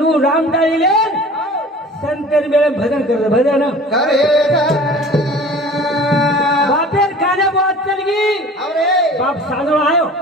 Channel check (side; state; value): both; normal; correlation 0.43